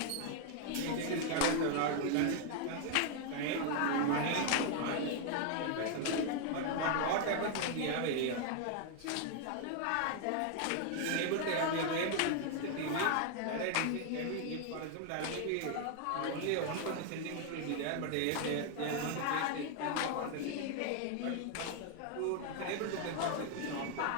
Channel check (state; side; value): different; both; correlation 0.00